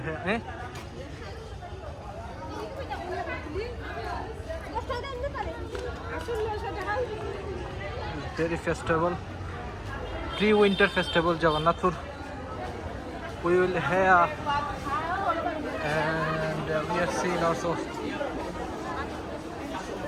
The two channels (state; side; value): identical; both; correlation 1.00